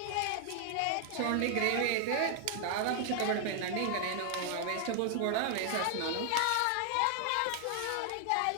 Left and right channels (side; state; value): both; different; correlation 0.00